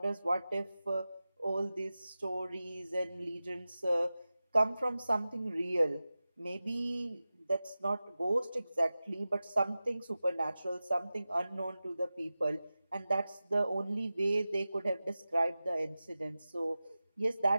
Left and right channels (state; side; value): inverted; both; correlation -0.95